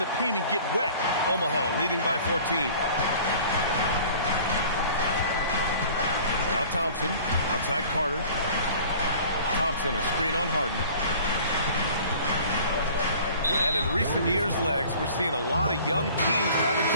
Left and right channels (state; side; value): inverted; both; correlation -0.47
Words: paint and get wet. Omaha leading by 14. Now Thompson. Outside Carter. Thompson, a screen on Harden. And in recent years, Legs, we're seeing a lot of young teams having